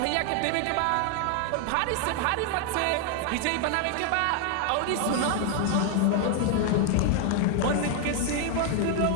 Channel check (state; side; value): different; both; correlation 0.01